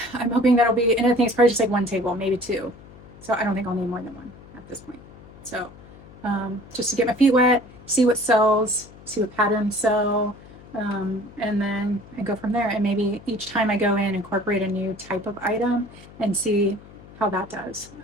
I'm hoping that'll be, and I think it's probably just like one table, maybe 2. So I don't think I'll need more than one at this point. So just to get my feet wet, see what sells, see what patterns sell, and then I go from there. And maybe each time I go in, incorporate a new type of item and see how that does.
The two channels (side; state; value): left; noise; hum, 20 dB below the sound